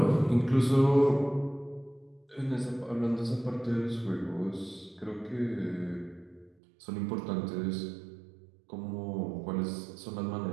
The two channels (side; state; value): left; drops out; at 6.6 s